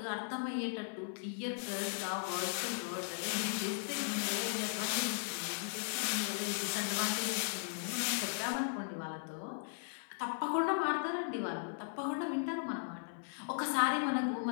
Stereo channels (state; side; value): silent; right; 53 dB below the other